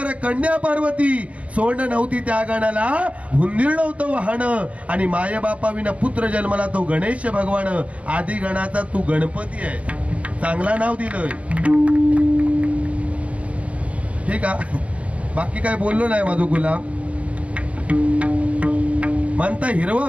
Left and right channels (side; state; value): left; late; 0.065 ms